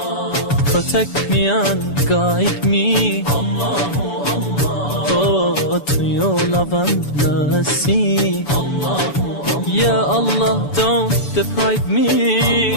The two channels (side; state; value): right; late; 7.0 ms